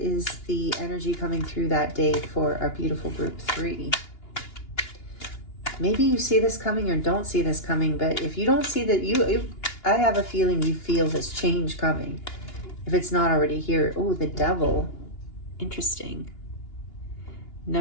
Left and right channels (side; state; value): right; late; 2.9 ms